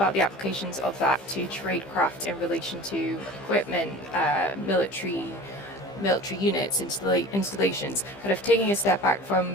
the applications of that to tradecraft in relation to equipment, military units, installations, kind of taking a step back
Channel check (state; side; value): late; right; 15 ms